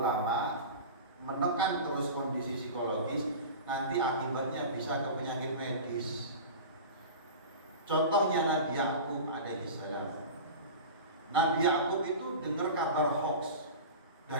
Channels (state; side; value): inverted; both; correlation -0.32